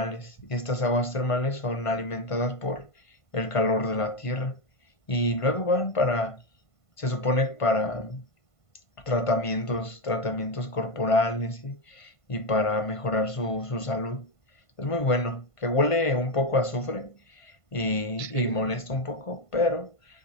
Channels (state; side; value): late; right; 1.5 ms